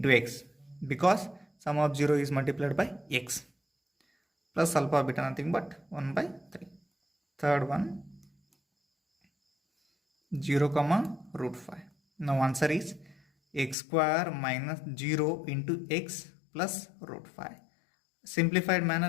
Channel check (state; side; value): drops out; right; at 13.8 s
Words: x, because sum of 0 is multiplied by x, plus alpha beta nothing but 1 by 3. Third one, 0 comma root 5. Now answer is x square minus 0 into x plus root 5. Simplified